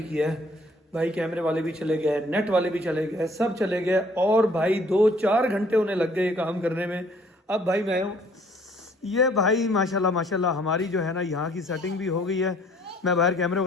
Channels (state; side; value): normal; both; correlation 0.59